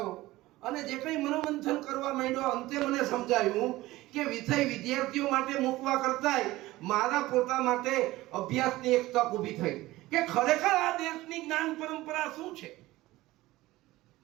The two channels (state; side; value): quieter; left; 17.9 dB